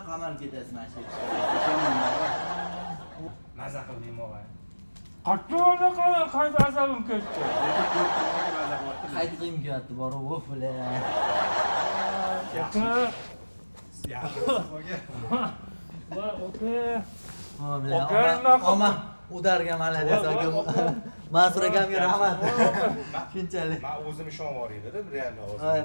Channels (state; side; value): inverted; both; correlation -1.00